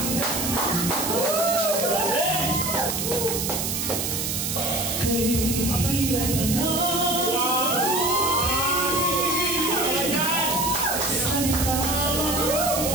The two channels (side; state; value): right; noise; hiss, 1 dB below the sound